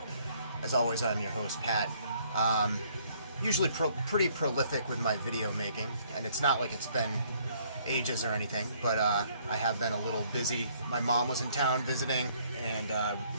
As always, I'm your host, Pat. Usually pretty prolific with my video making, and it's not like it's been ages or anything, but I have been a little busy. My mom was in town visiting, and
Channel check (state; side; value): inverted; both; correlation -0.64